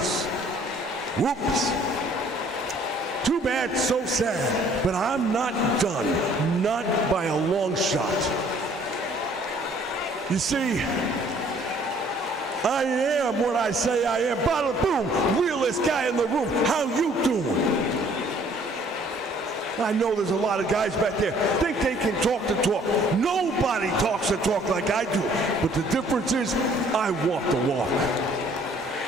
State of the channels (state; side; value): normal; both; correlation 0.58